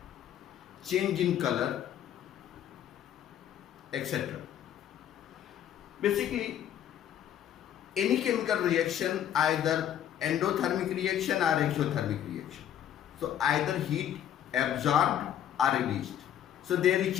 change in color, etc. Basically, any chemical reaction, either endothermic reaction or exothermic reaction. So either heat absorbed or released. So there is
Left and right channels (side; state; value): right; quieter; 10.4 dB